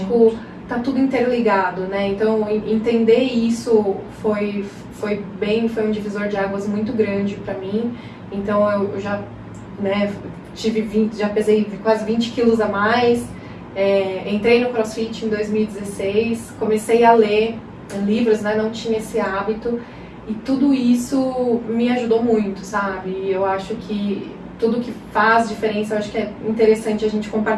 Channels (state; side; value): identical; both; correlation 1.00